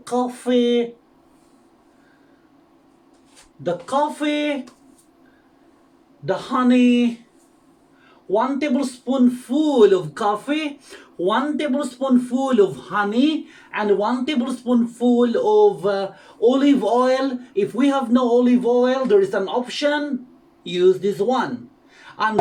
the honey, 1 tablespoonful of coffee, 1 tablespoonful of honey, and 1 tablespoonful of olive oil. If we have no olive oil, there is an option. Use this one. And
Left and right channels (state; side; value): identical; both; correlation 1.00